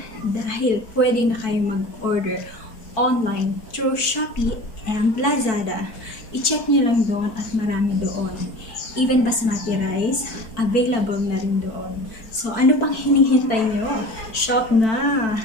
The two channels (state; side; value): late; right; 4.5 ms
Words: dahil pwede na kayo mag-order online through Shopee and Lazada. I-check nyo lang doon at marami doon. Even Basmati Rice, available na rin doon. So, ano pang hinihintay nyo? Shop na!